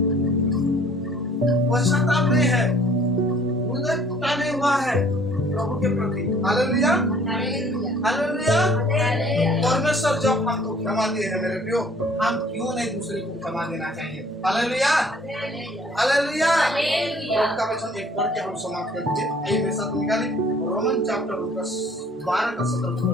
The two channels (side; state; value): both; normal; correlation 0.56